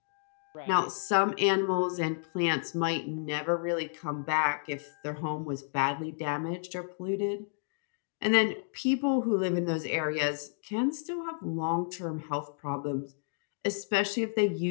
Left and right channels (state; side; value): silent; right; digital silence